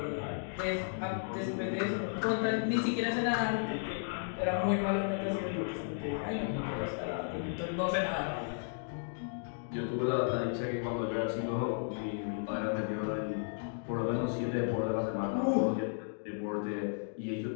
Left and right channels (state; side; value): silent; right; digital silence